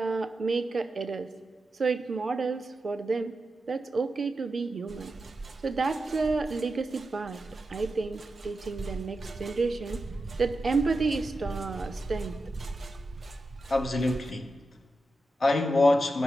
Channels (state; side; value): normal; both; correlation 0.89